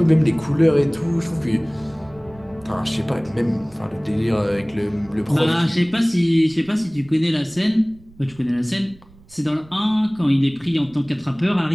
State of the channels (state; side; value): noise; right; rumble, 25 dB below the sound